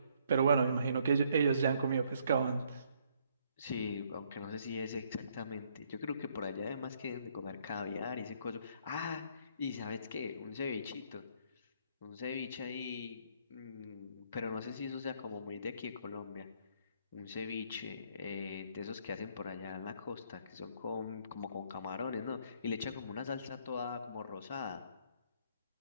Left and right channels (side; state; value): both; inverted; correlation -0.68